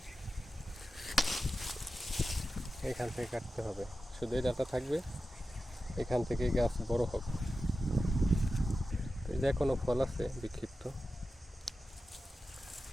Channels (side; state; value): both; normal; correlation 0.92